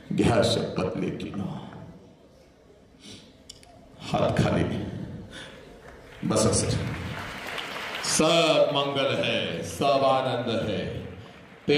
घ्या शपथ लेकीनो. हात खाली बस. सर सब मंगल है, सब आनंद है.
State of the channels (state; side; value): identical; both; correlation 1.00